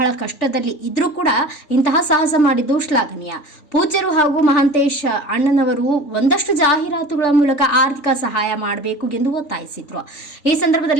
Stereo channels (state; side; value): late; right; 3.4 ms